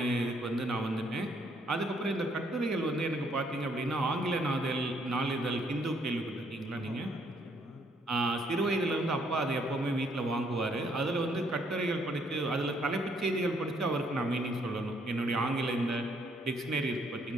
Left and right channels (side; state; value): both; normal; correlation 0.69